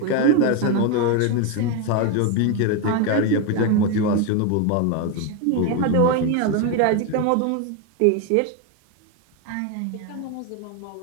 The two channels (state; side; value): different; both; correlation 0.02